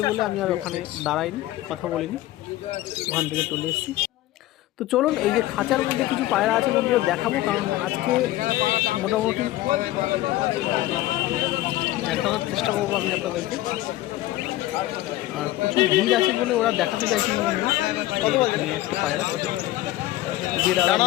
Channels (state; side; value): quieter; right; 16.1 dB